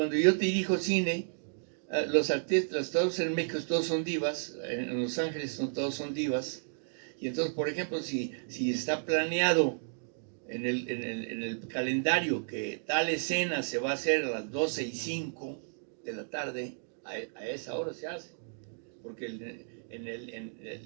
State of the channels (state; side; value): silent; left; digital silence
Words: yo dirijo cine, los artistas, todos en México, todos son divas, en Los Ángeles todos son divas, y entonces, por ejemplo, si está planeado en el calendario que tal escena se va a hacer a las 12:05 de la tarde, a esa hora se hace, porque el